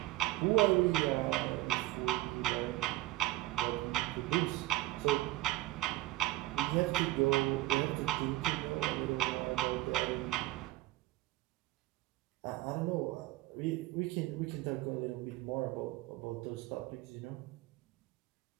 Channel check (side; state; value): left; quieter; 18.2 dB